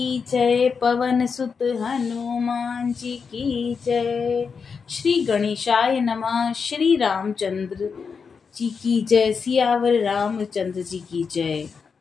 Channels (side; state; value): right; quieter; 5.7 dB